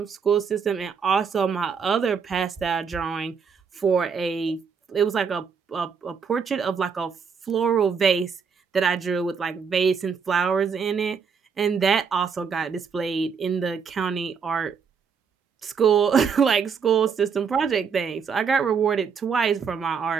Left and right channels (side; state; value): left; quieter; 6.1 dB